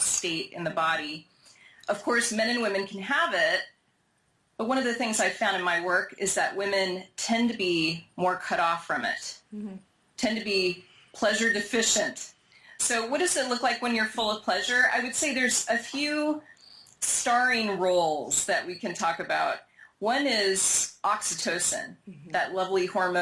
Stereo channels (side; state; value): both; identical; correlation 1.00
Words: in the body. Of course, men and women can have it, but one of the things I've found in my work is that women tend to be more cut off from it, tend to be pleasure deficient. So what does it look like when you're full of pleasure? I would say there's a few starring roles that we can talk about. One is oxytocin, that lovely